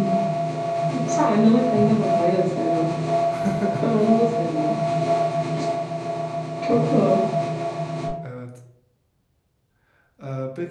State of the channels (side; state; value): both; identical; correlation 1.00